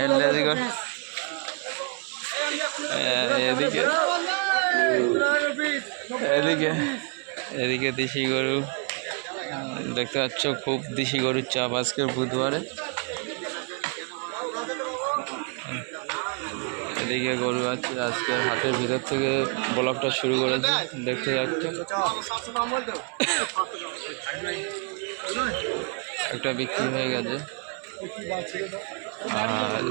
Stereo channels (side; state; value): left; quieter; 38.6 dB